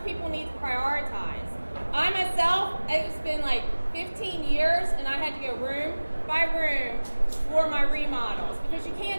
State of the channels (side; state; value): both; inverted; correlation -1.00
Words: people need to prioritize. I myself, it's been like 15 years, and I had to go room by room for my remodels, because you